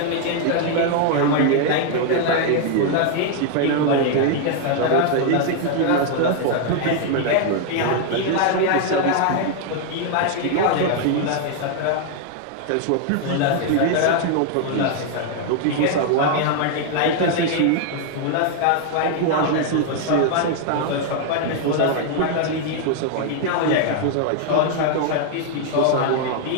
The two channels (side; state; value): both; different; correlation 0.00